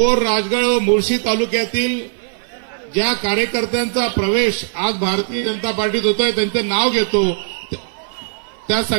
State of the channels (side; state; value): left; silent; 56 dB below the other